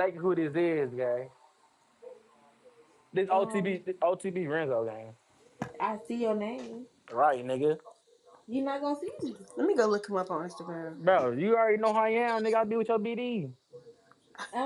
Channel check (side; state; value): both; identical; correlation 1.00